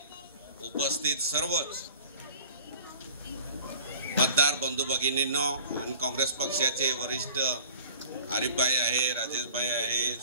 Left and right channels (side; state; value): both; inverted; correlation -0.45